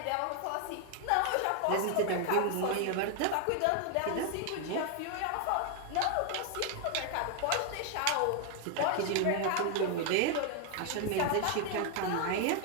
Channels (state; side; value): different; both; correlation 0.01